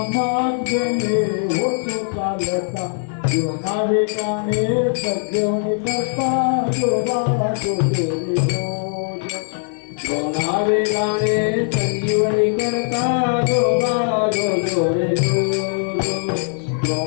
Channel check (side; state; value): right; silent; digital silence